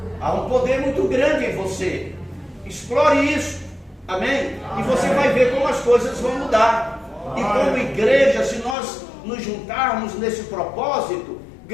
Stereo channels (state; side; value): drops out; right; at 8.8 s